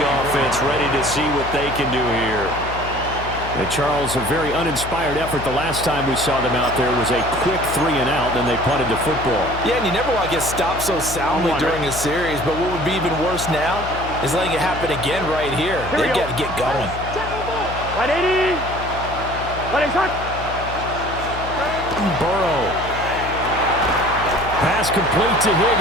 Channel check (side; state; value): left; noise; hum, 10 dB below the sound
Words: offense ready to see what they can do here. And Charles, a very uninspired effort. The last time we saw them out there was a quick 3 and out, then they punted the football. Yeah, and you never want to get stopped so soundly during a series, but what would be even worse now is letting it happen again right here. They've got to get going. 180. Burrow. Pass complete to